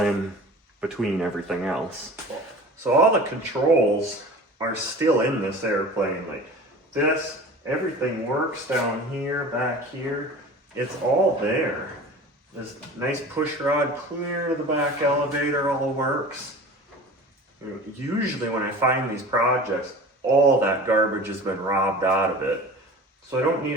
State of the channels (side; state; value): both; normal; correlation 0.39